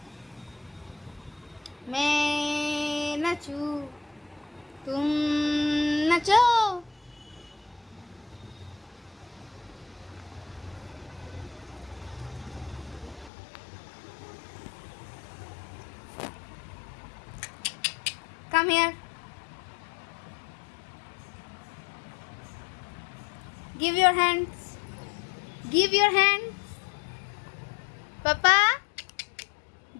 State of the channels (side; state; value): right; drops out; at 13.3 s